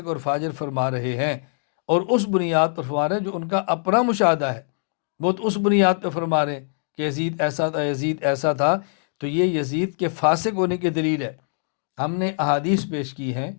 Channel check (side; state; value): right; silent; digital silence